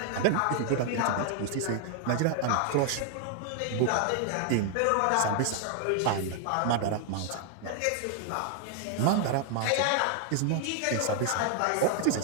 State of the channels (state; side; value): different; both; correlation 0.00